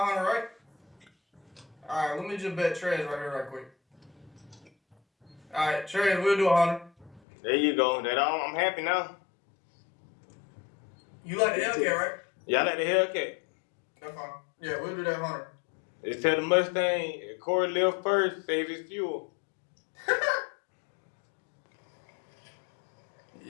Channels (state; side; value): drops out; right; at 7.2 s